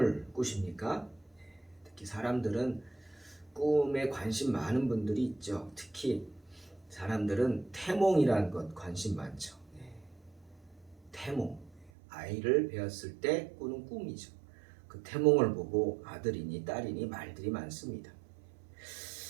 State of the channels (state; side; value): drops out; left; at 11.9 s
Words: 꾸십니까? 특히 사람들은 꿈에 관심 많은 분들이 있죠. 특히 사람들은 태몽이라는 것 관심 많죠. 태몽, 아이를 배웠을 때 꾸는 꿈이죠. 그 태몽을 보고 아들이니 딸이니 말들이 많습니다.